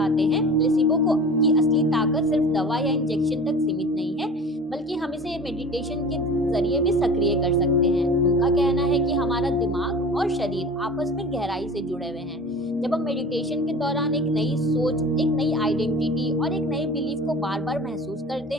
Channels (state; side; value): normal; both; correlation 0.38